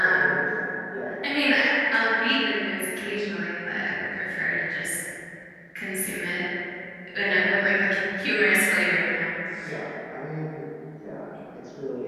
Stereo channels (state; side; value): identical; both; correlation 1.00